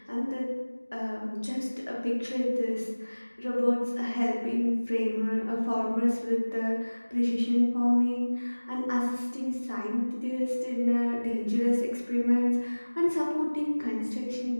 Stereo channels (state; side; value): inverted; both; correlation -1.00